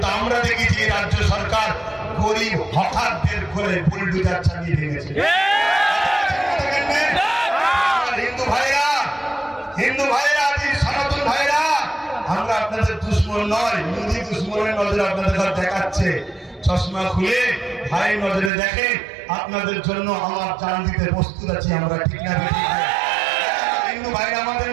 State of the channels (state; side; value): drops out; left; at 18.5 s